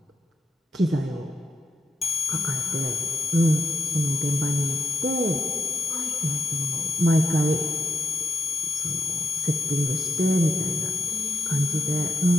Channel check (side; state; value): both; normal; correlation 0.86